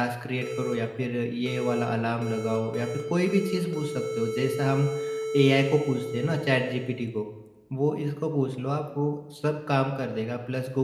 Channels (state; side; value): identical; both; correlation 1.00